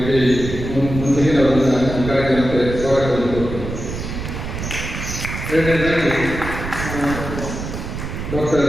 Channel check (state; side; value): noise; right; rumble, 6 dB below the sound